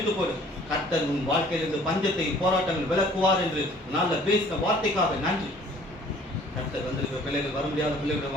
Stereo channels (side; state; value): both; normal; correlation 0.54